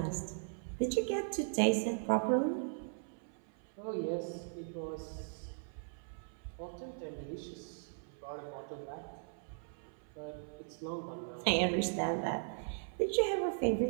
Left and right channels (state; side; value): silent; left; 52 dB below the other